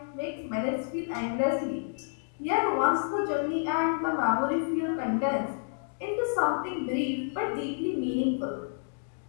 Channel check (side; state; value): right; silent; digital silence